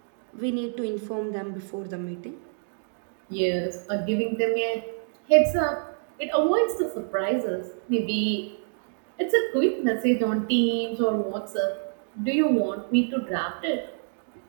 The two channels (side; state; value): left; silent; digital silence